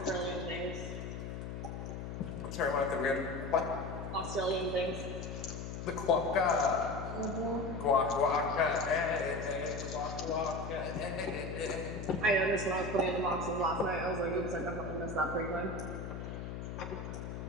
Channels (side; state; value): left; noise; hum, 6 dB below the sound